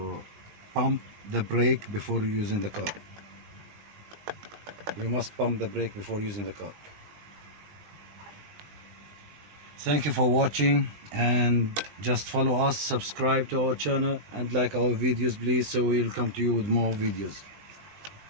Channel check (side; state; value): left; late; 20 ms